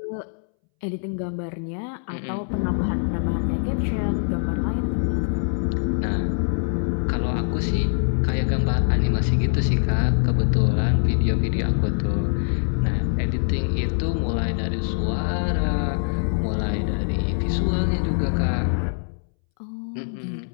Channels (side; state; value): right; silent; 63 dB below the other